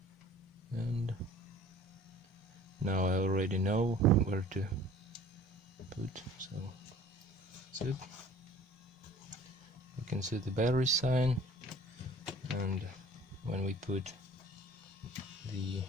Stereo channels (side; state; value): both; normal; correlation 0.49